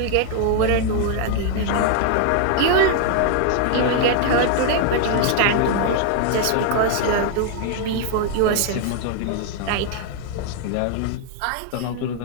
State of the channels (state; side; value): different; both; correlation 0.00